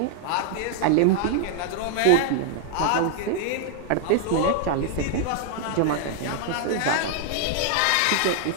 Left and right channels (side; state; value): both; different; correlation 0.00